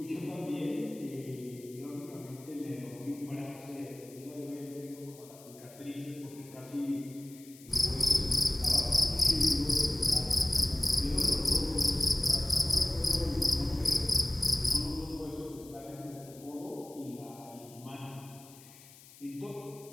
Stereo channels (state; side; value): noise; left; hiss, 21 dB below the sound